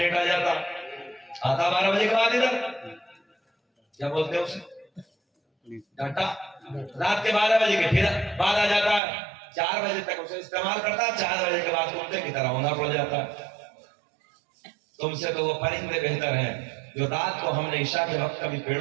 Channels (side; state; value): left; drops out; at 9.0 s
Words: آ جاتا. آتا 12 بجے کے بعد ادھر کیا بولتے ہیں اسے ڈاٹا, رات کے 12 بجے کے پھر بعد آ جاتا ہے. 4 بجے تک اسے استعمال کرتا ہے, 4 بجے کے بعد کتے کی طرح ہونا پڑ جاتا ہے. تم سے تو وہ پرندے بہتر ہیں جو رات کو ہم نے عشاء کے وقت کبھی